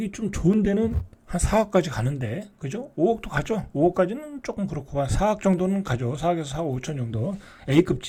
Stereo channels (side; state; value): both; identical; correlation 1.00